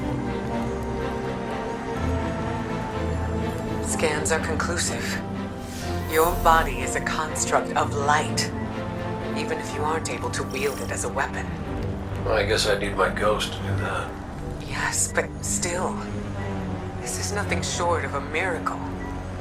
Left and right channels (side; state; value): both; identical; correlation 1.00